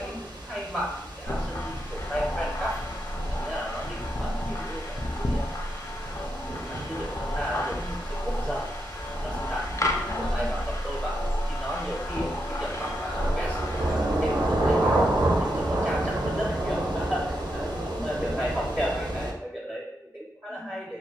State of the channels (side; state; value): both; normal; correlation 0.82